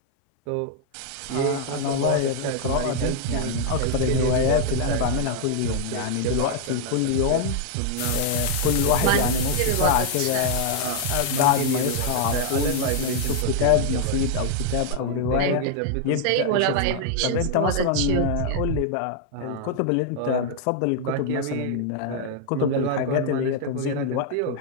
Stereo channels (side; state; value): both; different; correlation 0.00